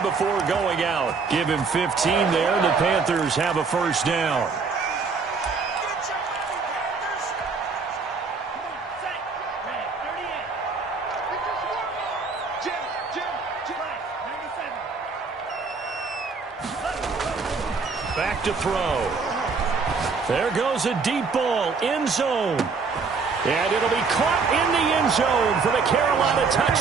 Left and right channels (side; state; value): left; quieter; 4.8 dB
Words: before going out. Give him 15 there, and the Panthers have a first down. Back to throw. There goes a deep ball, end zone. And it'll be caught in the end zone for the Carolina